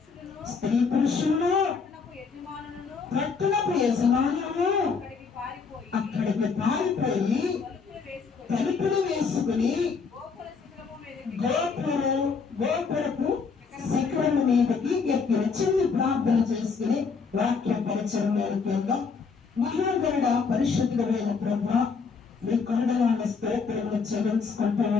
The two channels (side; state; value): right; quieter; 5.2 dB